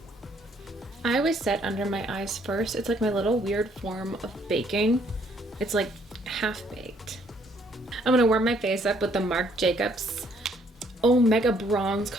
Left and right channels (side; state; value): both; normal; correlation 0.66